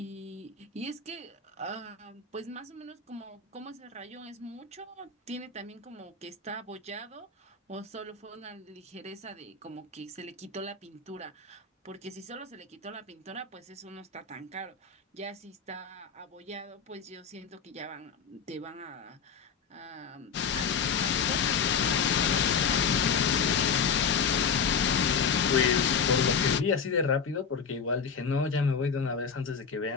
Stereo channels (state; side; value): quieter; right; 6.1 dB